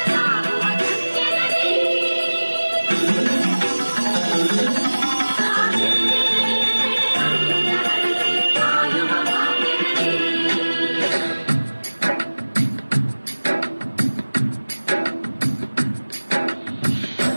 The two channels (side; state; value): both; inverted; correlation -1.00